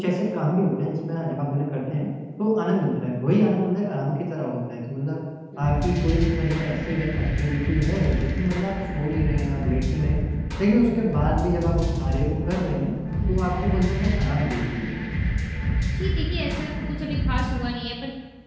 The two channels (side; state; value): both; identical; correlation 1.00